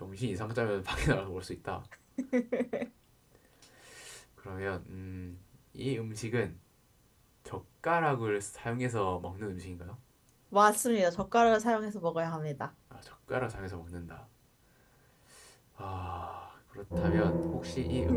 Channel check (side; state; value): both; identical; correlation 1.00